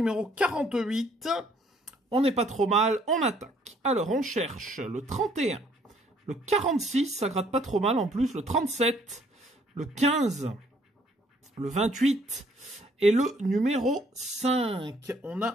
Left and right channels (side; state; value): both; normal; correlation 0.63